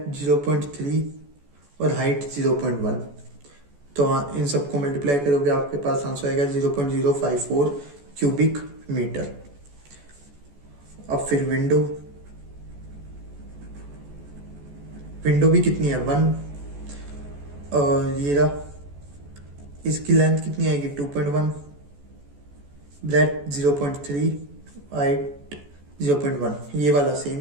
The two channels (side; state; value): left; late; 14 ms